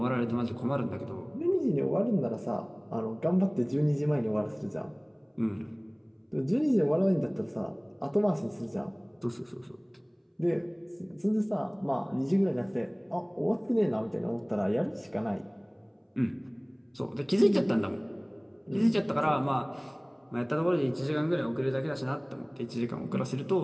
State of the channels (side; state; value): both; identical; correlation 1.00